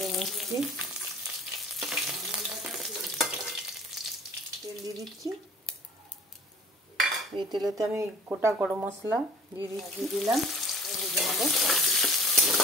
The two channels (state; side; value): normal; both; correlation 0.48